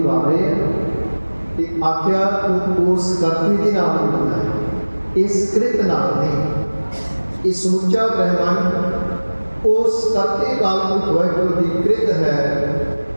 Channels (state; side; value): inverted; both; correlation -1.00